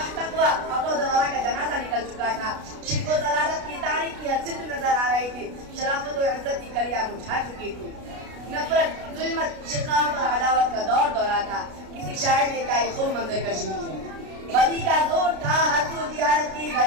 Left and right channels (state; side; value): late; left; 33 ms